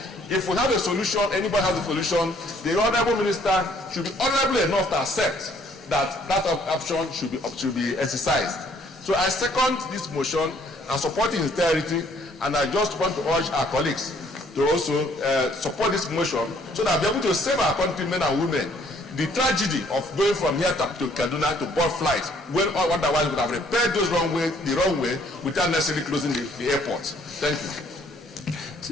If we have a solution, anybody has a solution, the honorable minister should be honorable enough to accept that that option should be exercised. So I second this motion and support its entirety, and I just want to urge our colleagues to also support this motion so that we'll be able to save our countrymen and women the tragedy of going from here to Kaduna to board flights when otherwise we would have repaired those the wrong way without necessarily closing the airport. Thank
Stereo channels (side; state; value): both; normal; correlation 0.63